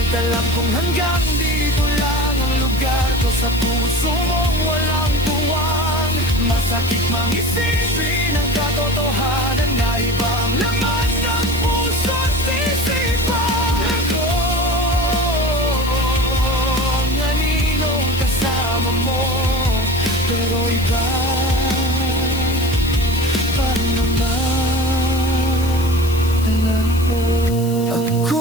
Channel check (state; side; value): noise; left; hiss, 15 dB below the sound